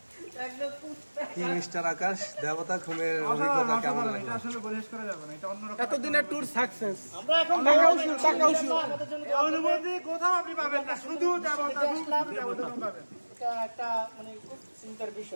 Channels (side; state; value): both; inverted; correlation -1.00